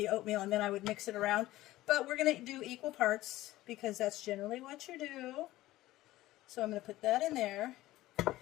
oatmeal and then I would mix it around. But we're going to do equal parts because that's generally what you do. So I'm going to put that in there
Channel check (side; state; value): right; quieter; 16.5 dB